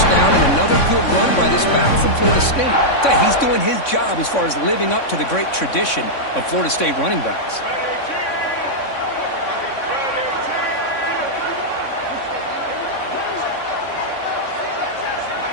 down and another good run by this back from Florida State. He's doing his job as far as living up to the great tradition of Florida State running backs.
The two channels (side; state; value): right; late; 3.6 ms